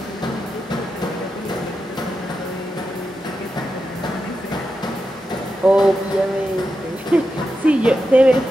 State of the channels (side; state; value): both; normal; correlation 0.89